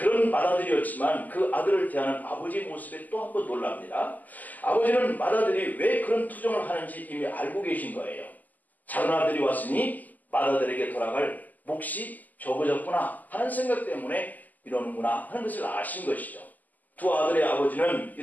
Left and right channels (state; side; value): late; right; 0.082 ms